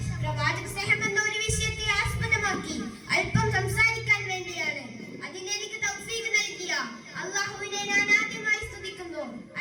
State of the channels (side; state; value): both; identical; correlation 1.00